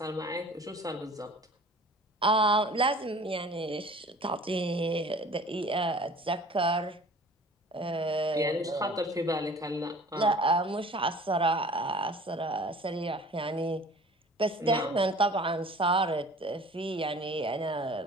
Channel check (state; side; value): normal; both; correlation 0.46